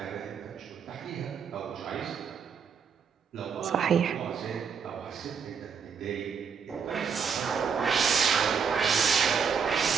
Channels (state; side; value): quieter; left; 6.4 dB